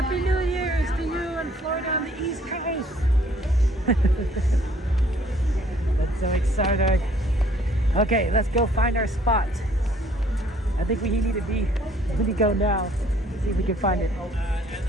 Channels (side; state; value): both; normal; correlation 0.61